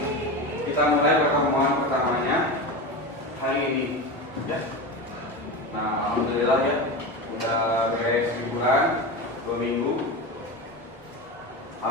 kita mulai pertemuan pertamanya hari ini ya. Nah, alhamdulillah ya, udah beres liburan 2 minggu.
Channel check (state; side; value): normal; both; correlation 0.23